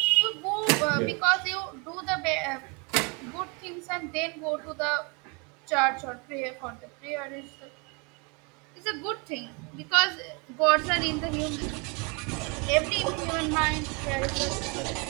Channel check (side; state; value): left; quieter; 31.7 dB